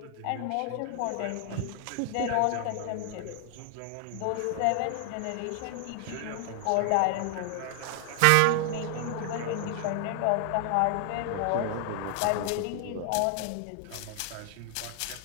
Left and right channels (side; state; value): both; different; correlation 0.00